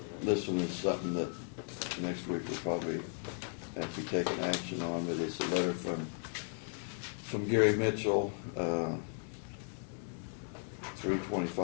This one is something that next week we'll probably have to be taking action on, but it's a letter from Gary Mitchell,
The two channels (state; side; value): silent; right; 54 dB below the other